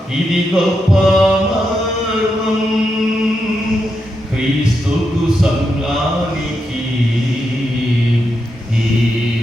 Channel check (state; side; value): normal; both; correlation 0.85